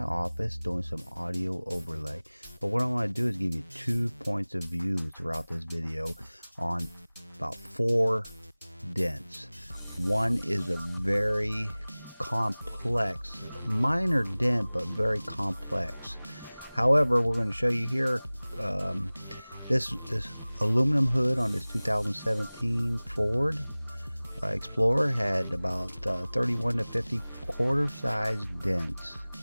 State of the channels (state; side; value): inverted; both; correlation -0.99